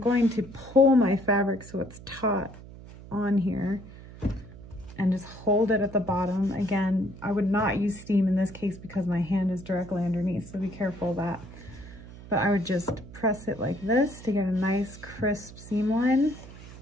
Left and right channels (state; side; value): noise; right; hum, 16 dB below the sound